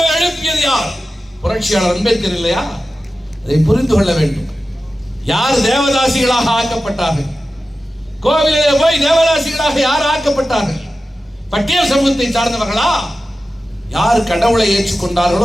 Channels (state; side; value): normal; both; correlation 0.94